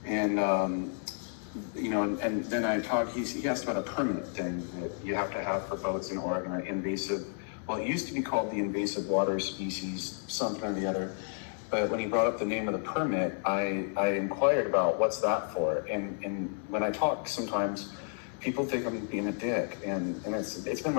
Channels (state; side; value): silent; right; 57 dB below the other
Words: And, and then he asked about a permit thing that you have to have for boats in Oregon, an invasive, well, it used to be called the invasive water species, something or the other. But when he brought up the name of the permit, I inquired about what's that for. And when I talk, sometimes people think I'm being a dick, and it's been